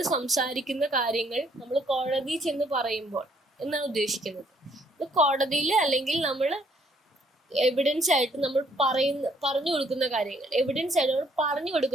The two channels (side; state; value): both; normal; correlation 0.66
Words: സംസാരിക്കുന്ന കാര്യങ്ങൾ നമ്മൾ കോടതി ചെന്ന് പറയുമ്പോൾ എന്നാണ് ഉദ്ദേശിക്കുന്നത്. ഇത് കോടതിയിൽ അല്ലെങ്കിൽ നമ്മൾ എവിഡൻസ് ആയിട്ട് നമ്മൾ പറഞ്ഞു കൊടുക്കുന്ന കാര്യങ്ങൾ, എവിഡൻസ് ആയിട്ട് നമ്മൾ പറഞ്ഞു